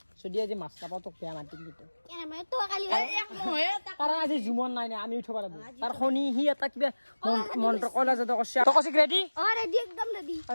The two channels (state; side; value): inverted; both; correlation -1.00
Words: যদি আজি মাছ নাপাওঁ তোক বেয়া মাতিম কিন্তু কেনে মই তো কালি কাৰণ আজি জুমন নাই নাই আমি উঠিব লাগিব তাৰ শনি সি এটা কিবা মন্ত্ৰ কলা যাতে কৈছে তই কৈছে ৰেডি অঁ ৰেডি একদম ৰেডি